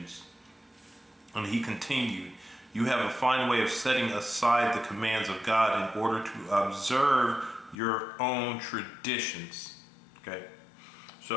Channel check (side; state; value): right; drops out; at 7.8 s